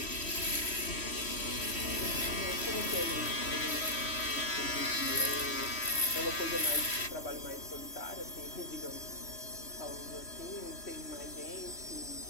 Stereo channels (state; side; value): late; right; 3.1 ms